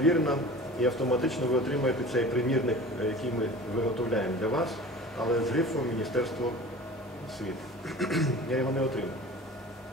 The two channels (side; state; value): both; normal; correlation 0.39